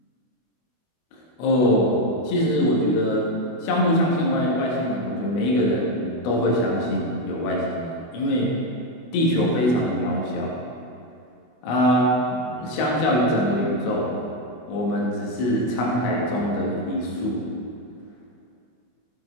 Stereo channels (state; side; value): late; right; 24 ms